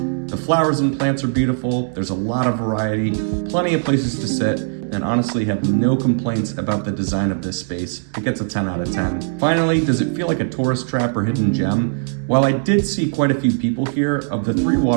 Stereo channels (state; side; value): silent; left; digital silence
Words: flowers and plants are beautiful, there's a lot of variety, plenty of places to sit, and honestly have no complaints about the design of this space. It gets a 10 out of 10. Finally, does it feel like a tourist trap or hidden gem? While I did see quite a few people here, of the 3